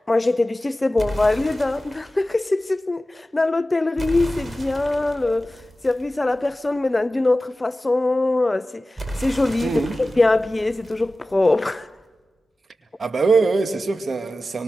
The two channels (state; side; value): normal; both; correlation 0.95